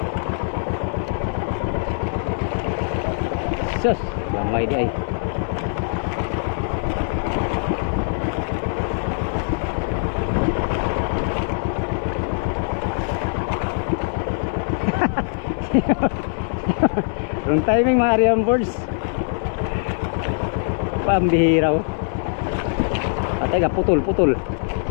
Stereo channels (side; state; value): right; silent; digital silence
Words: Sus, gamay di ay. Wrong timing mga Ariam birds. Pambihira. Patay ka, putol, putol.